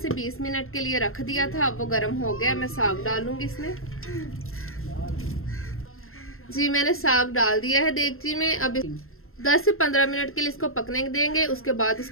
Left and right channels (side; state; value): right; late; 0.61 ms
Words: 20 मिनट के लिए रख दिया था, अब वो गर्म हो गया। मैं साग डालूंगी इसमें। जी मैंने साग डाल दिया है देगची में। अब 10 से 15 मिनट के लिए इसको पकने देंगे, उसके बाद